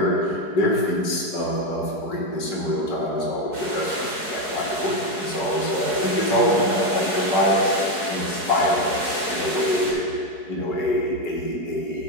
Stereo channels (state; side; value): late; right; 4.7 ms